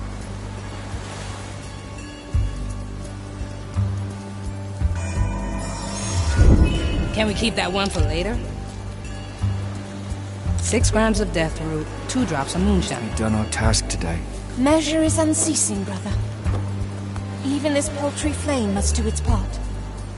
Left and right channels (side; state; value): both; identical; correlation 1.00